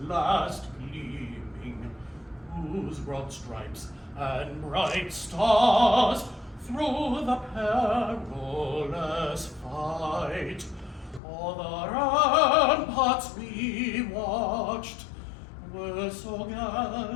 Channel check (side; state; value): right; drops out; at 11.2 s